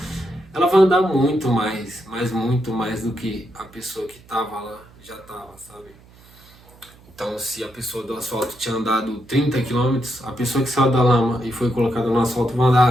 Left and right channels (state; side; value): noise; right; hum, 25 dB below the sound